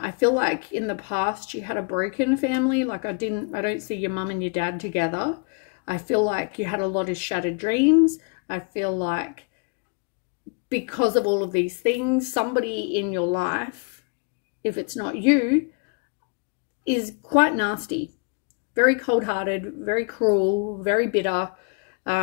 feel like in the past you had a broken family. Like I don't see your mum and your dad together. I feel like you had a lot of shattered dreams. I feel like because of all of these things, somebody in your life, if it's not you, is quite nasty, very cold-hearted, very cruel, very bitter.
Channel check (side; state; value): right; quieter; 36.3 dB